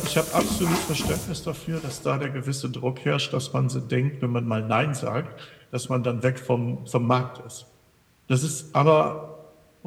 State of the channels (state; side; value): identical; both; correlation 1.00